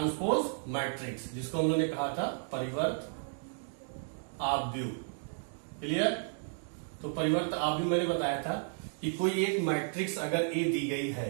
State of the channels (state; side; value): silent; left; digital silence